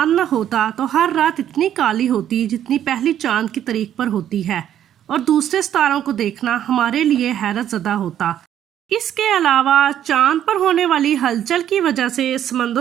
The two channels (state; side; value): quieter; left; 10.6 dB